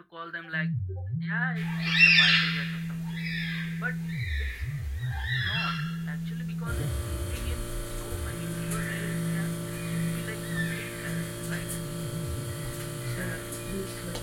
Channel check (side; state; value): both; identical; correlation 1.00